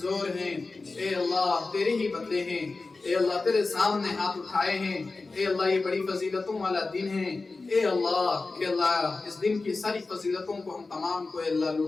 ہیں، اے اللہ تیرے ہی بندے ہیں. اے اللہ تیرے سامنے ہاتھ اٹھائے ہیں. اے اللہ یہ بڑی فضیلتوں والا دن ہے. اے اللہ اس دن کی ساری فضیلتوں کو ہم تمام کو اے اللہ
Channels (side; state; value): right; quieter; 3.7 dB